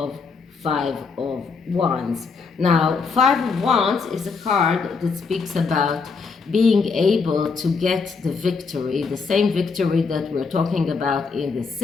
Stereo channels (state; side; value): quieter; right; 4.9 dB